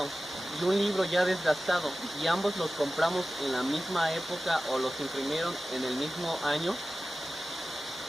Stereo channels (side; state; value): both; normal; correlation 0.95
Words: y un libro ya desgastado y ambos los compramos en la misma época o los imprimieron en el mismo año,